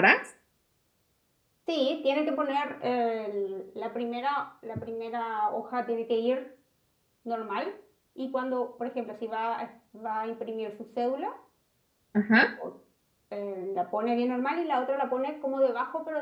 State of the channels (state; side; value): identical; both; correlation 1.00